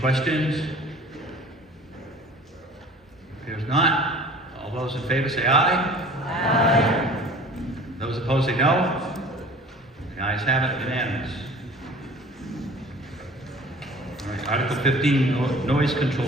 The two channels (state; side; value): normal; both; correlation 0.45